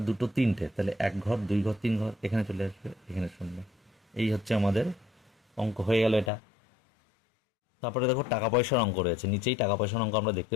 2 3টে, তাহলে 1 ঘর 2 ঘর 3 ঘর, এখানে চলে আসবে, এখানে শূন্য। এই হচ্ছে আমাদের অঙ্ক, হয়ে গেল এটা। তারপরে দেখো টাকা পয়সার অঙ্ক রয়েছে, নিচেই টাকা পয়সার অঙ্ক আমরা দেখতে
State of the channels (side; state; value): right; drops out; at 6.3 s